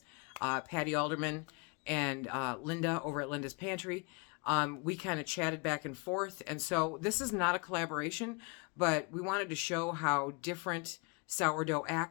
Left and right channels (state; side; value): quieter; right; 31.9 dB